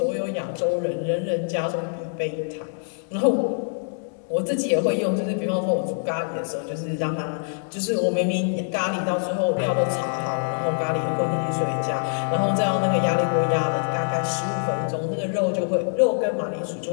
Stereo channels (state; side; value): silent; right; digital silence